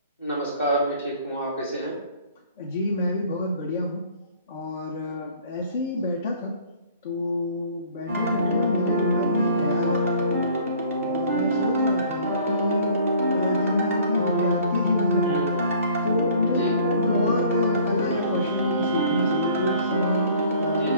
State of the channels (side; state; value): both; inverted; correlation -0.54